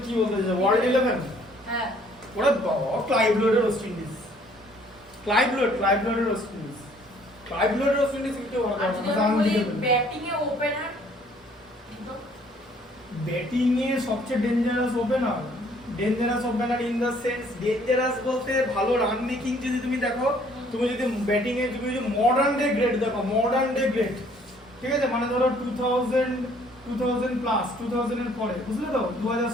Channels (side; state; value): both; normal; correlation 0.60